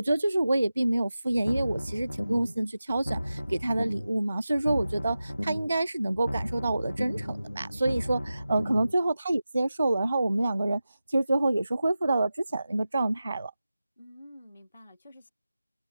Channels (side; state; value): both; inverted; correlation -0.94